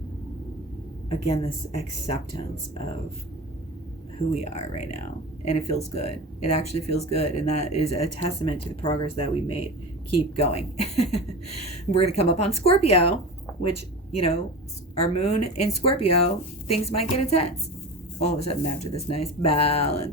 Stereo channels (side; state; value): both; normal; correlation 0.30